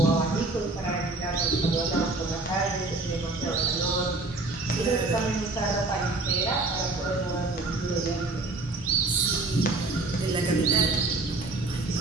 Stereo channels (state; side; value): quieter; left; 3.2 dB